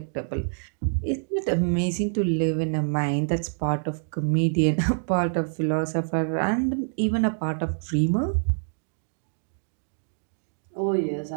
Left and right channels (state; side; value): silent; left; digital silence